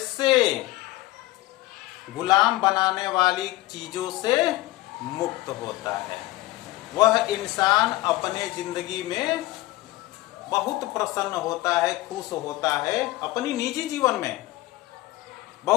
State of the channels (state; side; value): quieter; right; 18.3 dB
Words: गुलाम बनाने वाली चीजों से मुक्त होता है। वह इंसान अपने जिंदगी में बहुत प्रसन्न होता है, खुश होता है, अपनी निजी जीवन में